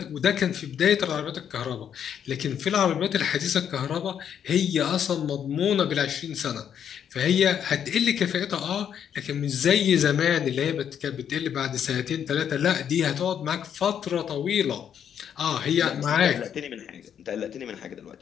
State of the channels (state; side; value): quieter; right; 8.7 dB